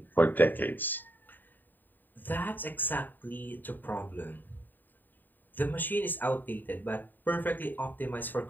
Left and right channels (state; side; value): late; right; 0.090 ms